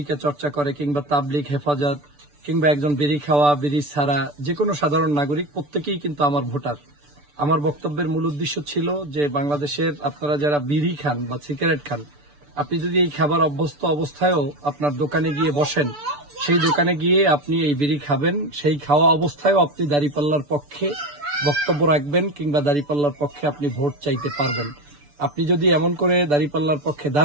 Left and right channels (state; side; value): late; left; 6.9 ms